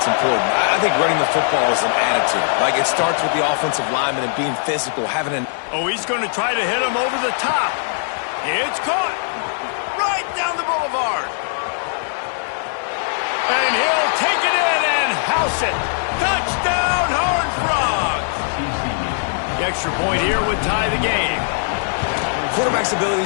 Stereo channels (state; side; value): silent; right; digital silence